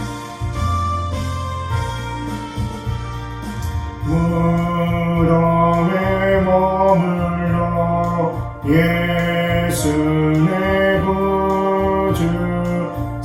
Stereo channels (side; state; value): both; identical; correlation 1.00